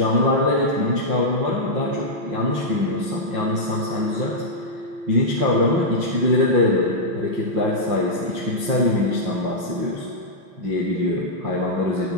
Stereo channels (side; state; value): left; late; 5.7 ms